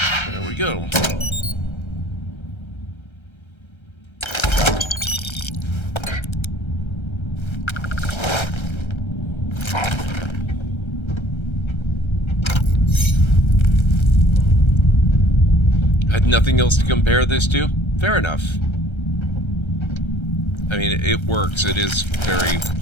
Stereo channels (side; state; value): right; late; 1.3 ms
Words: There we go. Had nothing else to compare this to? Fair enough. I mean, it works. It is very